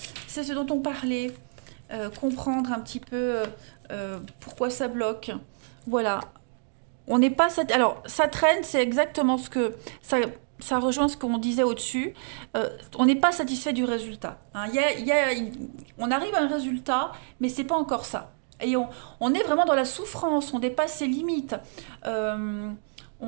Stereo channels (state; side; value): silent; left; digital silence